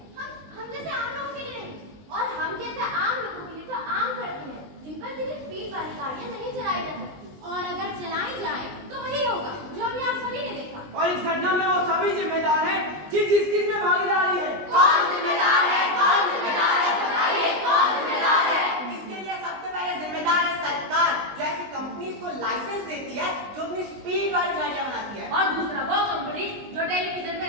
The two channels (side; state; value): left; late; 20 ms